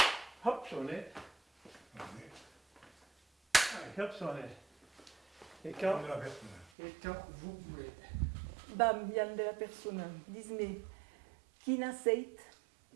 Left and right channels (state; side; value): drops out; left; at 6.7 s